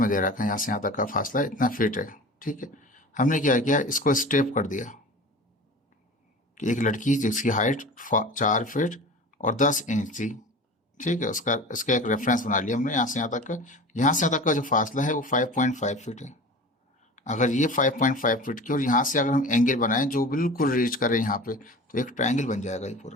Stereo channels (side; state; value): both; normal; correlation 0.36